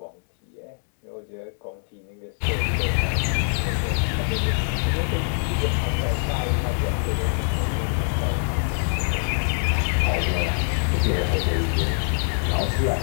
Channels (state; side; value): silent; right; 62 dB below the other